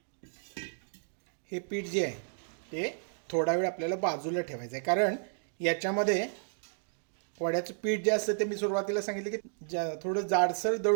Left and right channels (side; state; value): left; silent; digital silence